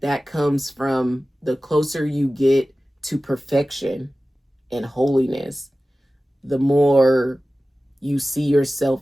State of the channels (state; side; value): normal; both; correlation 0.96